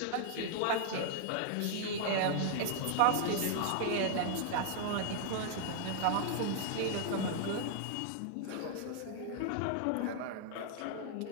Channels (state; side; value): different; both; correlation 0.00